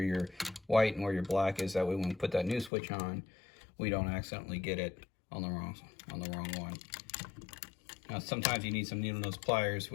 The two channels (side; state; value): right; drops out; at 2.7 s